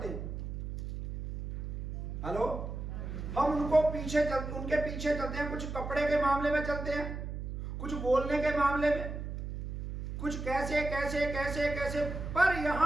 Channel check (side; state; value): right; noise; hum, 6 dB below the sound